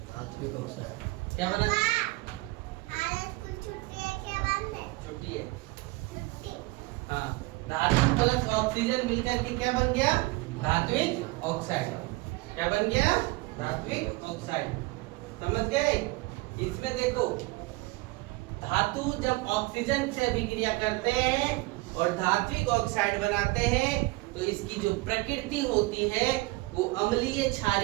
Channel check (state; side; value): quieter; left; 22.6 dB